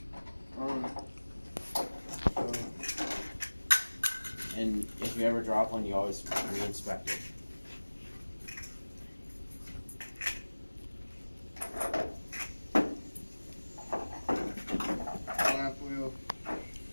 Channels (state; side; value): inverted; both; correlation -1.00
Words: So And if you ever drop one, you always re-inspect it. flap wheel,